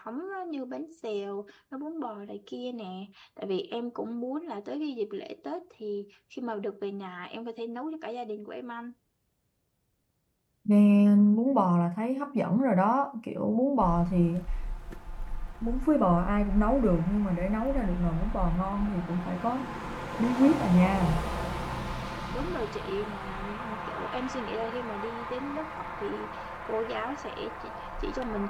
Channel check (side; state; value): both; identical; correlation 1.00